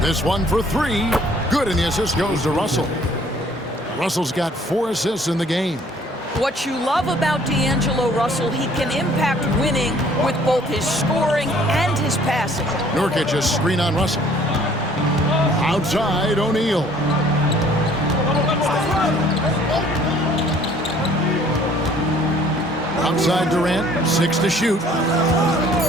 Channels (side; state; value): both; normal; correlation 0.57